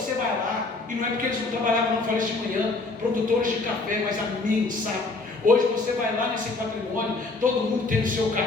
vai lá, e não é porque eles não trabalhavam, não, falei isso de manhã, produtores de café, mas a mim, sabe? Hoje você vai lá nesse patrimônio, todo mundo tem o seu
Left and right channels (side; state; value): right; quieter; 3.5 dB